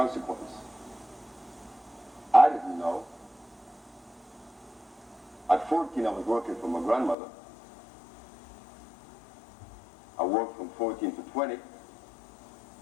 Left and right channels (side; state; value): right; drops out; at 7.2 s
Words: I didn't know. At 14, I was working for my grandmother. I worked from 14 to 20.